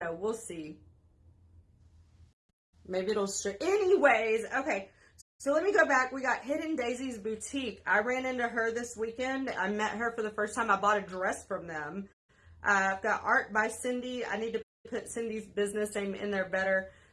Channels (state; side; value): identical; both; correlation 1.00